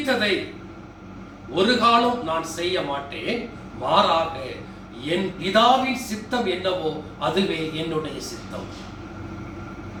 ஒரு காலம் நான் செய்ய மாட்டேன். மாறாக என் பிதாவின் சித்தம் என்னவோ அதுவே என்னுடைய சித்தம்.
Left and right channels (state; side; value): identical; both; correlation 1.00